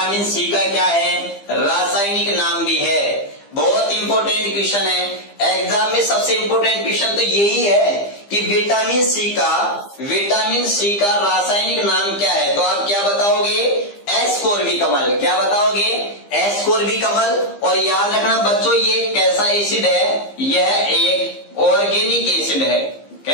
सी का क्या है, रासायनिक नाम भी है। बहुत इंपॉर्टेंट क्वेश्चन है एग्जाम में, सबसे इंपॉर्टेंट क्वेश्चन तो यही है कि विटामिन सी का रासायनिक नाम क्या है। तो आप क्या बताओगे, एस्कोर्बिक अम्ल। क्या बताओगे, एस्कोर्बिक अम्ल। और याद रखना बच्चों ये कैसा एसिड है, यह एक ऑर्गेनिक एसिड है।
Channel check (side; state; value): right; late; 15 ms